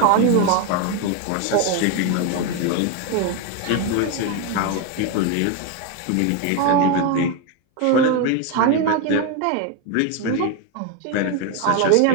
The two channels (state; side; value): different; both; correlation 0.02